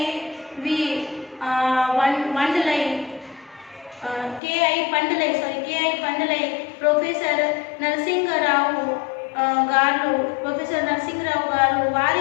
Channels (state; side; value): drops out; right; at 4.4 s